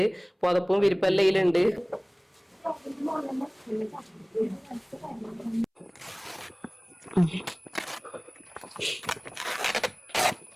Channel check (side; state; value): both; identical; correlation 1.00